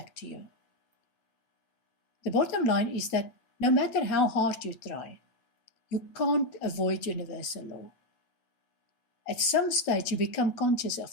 to you. The bottom line is that no matter how hard you try, you can't avoid universal law. At some stage, you become conscious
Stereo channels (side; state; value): right; late; 8.5 ms